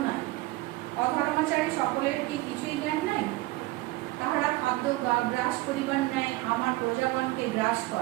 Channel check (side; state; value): left; quieter; 19.5 dB